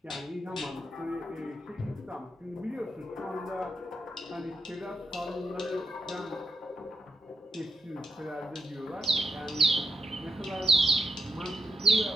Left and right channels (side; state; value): both; normal; correlation 0.85